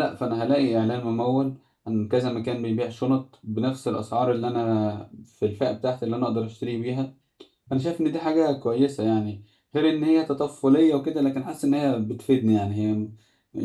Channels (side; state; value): both; identical; correlation 1.00